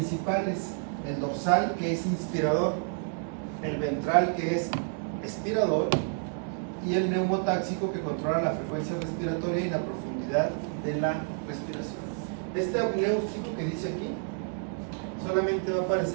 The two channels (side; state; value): left; silent; 57 dB below the other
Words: el dorsal, que es inspirador, el ventral, que es expirador, y el neumotáxico, que controla la frecuencia respiratoria y la profundidad de la respiración. Este apneústico que dice aquí solamente va a